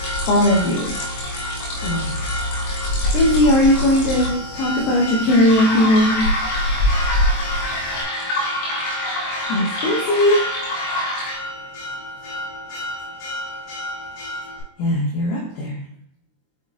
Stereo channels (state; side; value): late; right; 23 ms